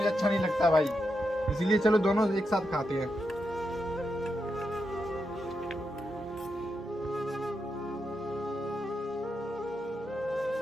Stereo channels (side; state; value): both; normal; correlation 0.85